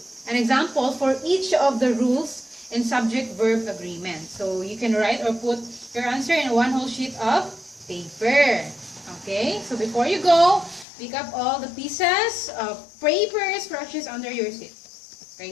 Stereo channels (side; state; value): right; drops out; at 10.9 s